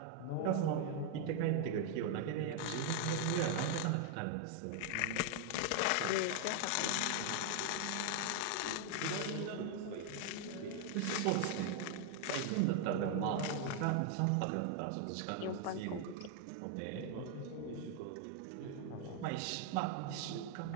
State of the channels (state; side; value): different; both; correlation 0.00